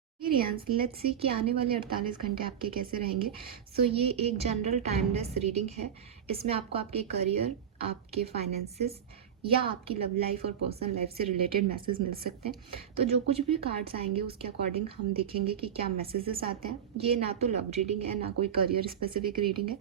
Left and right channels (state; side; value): quieter; left; 8.7 dB